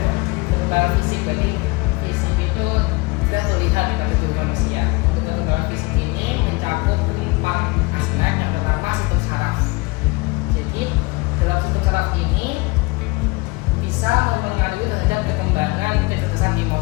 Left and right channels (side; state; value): right; quieter; 24.9 dB